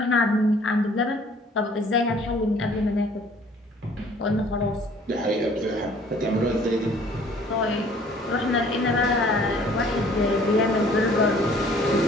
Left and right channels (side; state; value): both; normal; correlation 0.55